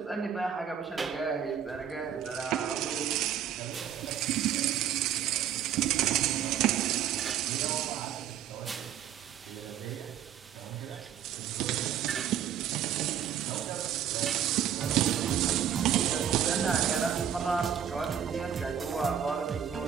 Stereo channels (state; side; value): quieter; left; 9.3 dB